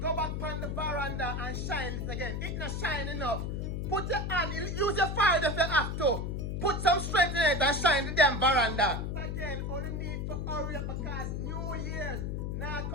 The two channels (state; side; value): noise; left; hum, 2 dB below the sound